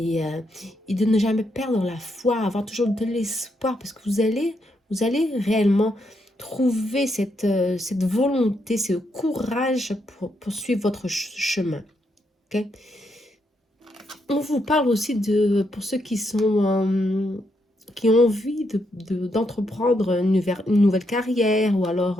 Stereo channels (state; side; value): normal; both; correlation 0.78